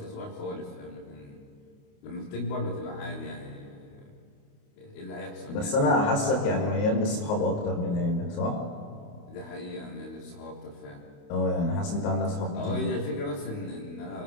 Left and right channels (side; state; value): right; late; 28 ms